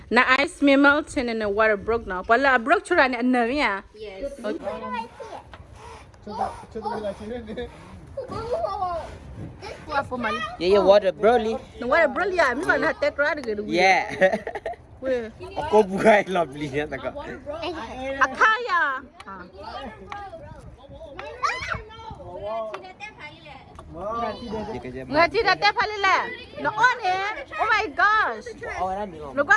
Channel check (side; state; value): both; identical; correlation 1.00